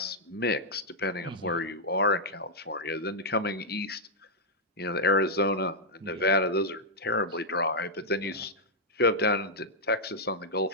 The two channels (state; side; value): normal; both; correlation -0.06